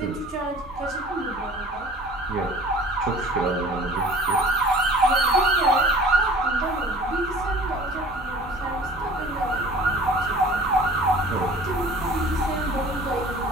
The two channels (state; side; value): normal; both; correlation 0.46